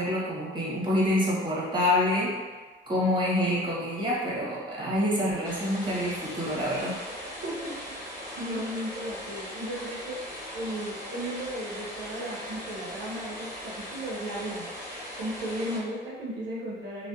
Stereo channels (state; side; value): normal; both; correlation 0.43